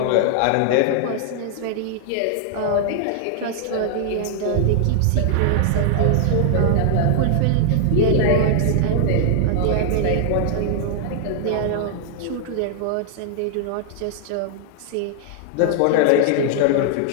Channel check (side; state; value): both; different; correlation -0.01